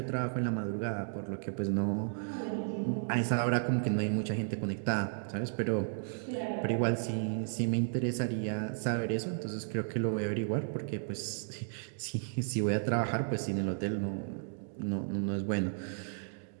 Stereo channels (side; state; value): left; silent; digital silence